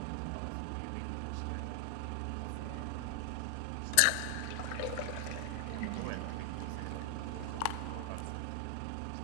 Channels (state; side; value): different; both; correlation 0.00